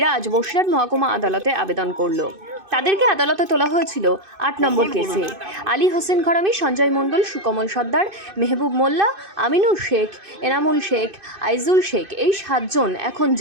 আজ বসিরহাট মহকুমা আদালতে আবেদন করল। তাদেরকে আদালতে তোলা হয়েছিল 8 নম্বর কেসে। আলী হোসেন ঘরামি, সঞ্জয় মণ্ডল, সুকমল সর্দার, মেহবুব মোল্লা, আমিনুর শেখ, এনামুল শেখ, আইজুল শেখ এই 7 জন এখন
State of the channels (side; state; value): left; late; 2.6 ms